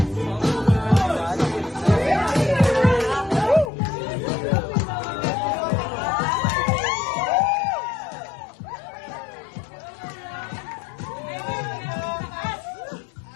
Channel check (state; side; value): drops out; right; at 3.7 s